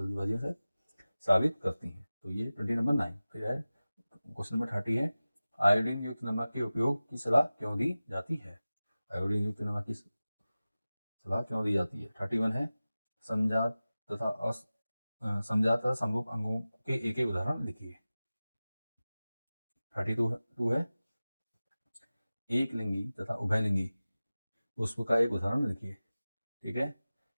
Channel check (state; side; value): inverted; both; correlation -0.97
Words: से, स्रावित करती हैं, तो ये 20 नंबर 9। फिर है क्वेश्चन नंबर 30 है आयोडीन युक्त नमक के उपयोग की सलाह क्यों दी जाती है। आयोडीन युक्त नमक की सलाह क्यों दी जाती है। 31 है समजात तथा समरूप अंगों के एक एक उदाहरण लिखिए। 32 है एक लिंगी तथा उभयलिंगी पुष्प का एक उदाहरण लिखिए। ठीक है।